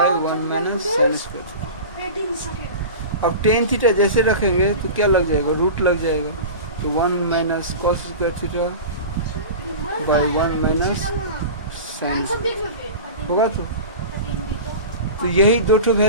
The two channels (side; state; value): both; inverted; correlation -0.32